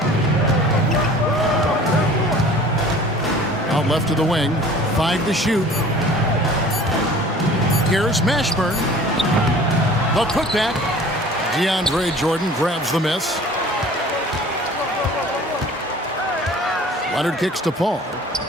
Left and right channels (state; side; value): normal; both; correlation 0.46